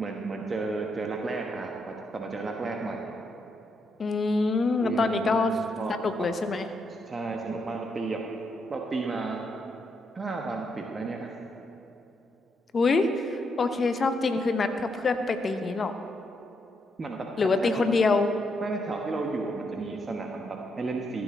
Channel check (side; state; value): both; normal; correlation 0.78